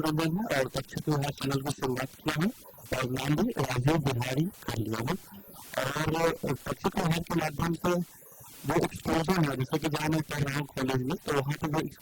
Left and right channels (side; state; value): both; identical; correlation 1.00